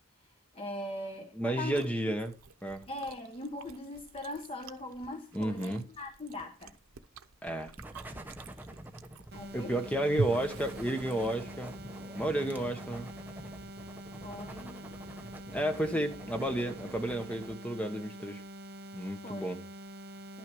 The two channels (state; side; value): normal; both; correlation 0.75